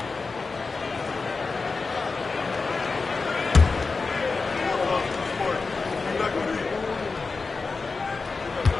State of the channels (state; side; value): quieter; right; 4.2 dB